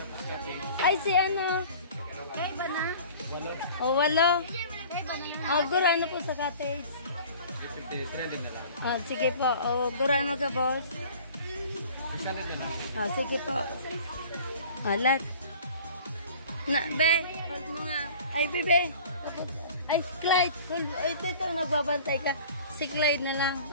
Ay, si ano? Ay, ba na? Oh, 8. Oh, gura na po sa cottage. Oh, sige po. Oh, gura na ka, boss. Oh, sige po. Alat. Na, be. Hold mo nga. Ay, bebe. Ay, Clyde. Ito, nagbabantay ka. Si Clyde na lang.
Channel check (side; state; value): both; inverted; correlation -0.45